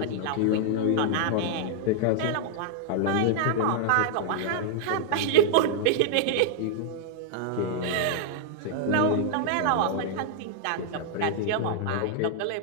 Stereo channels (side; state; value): both; different; correlation -0.01